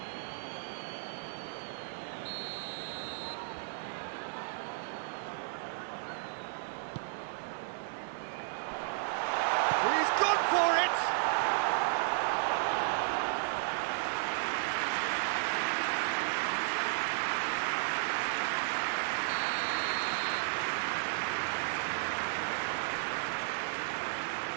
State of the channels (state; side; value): silent; left; 55 dB below the other